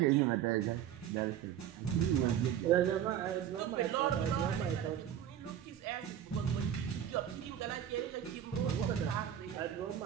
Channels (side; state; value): left; quieter; 10.1 dB